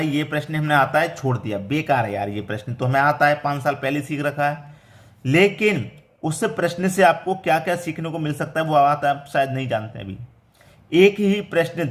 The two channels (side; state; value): both; identical; correlation 1.00